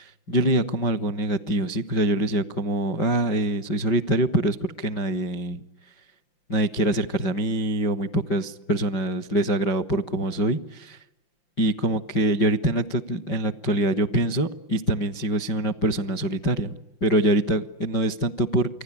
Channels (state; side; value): late; right; 5.7 ms